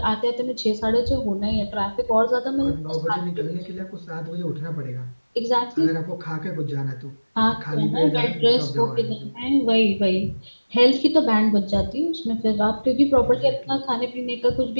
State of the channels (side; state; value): both; inverted; correlation -1.00